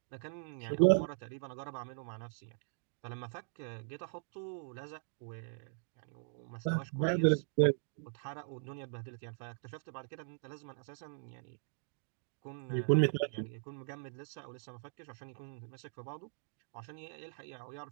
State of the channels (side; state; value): left; silent; digital silence